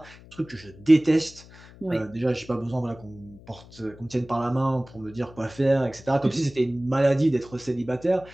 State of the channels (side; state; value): left; noise; hum, 21 dB below the sound